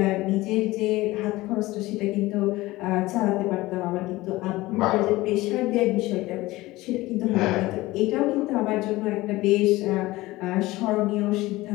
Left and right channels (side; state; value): right; quieter; 19.0 dB